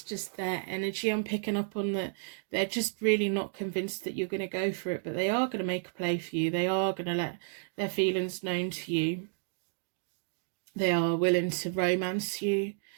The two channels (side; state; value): left; silent; digital silence